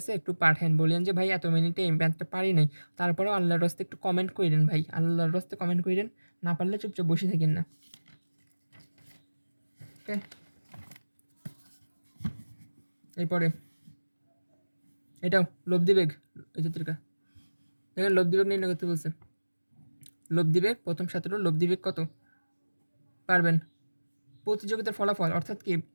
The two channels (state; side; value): inverted; both; correlation -1.00